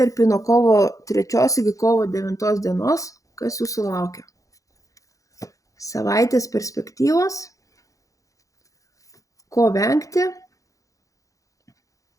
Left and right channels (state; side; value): late; right; 0.16 ms